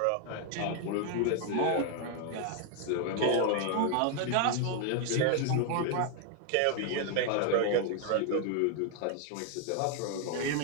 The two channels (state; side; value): different; both; correlation 0.00